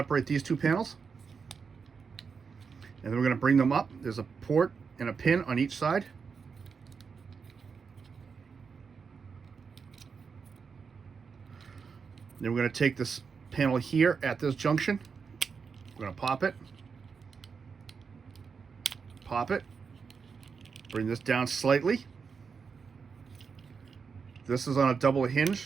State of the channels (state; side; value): quieter; left; 5.6 dB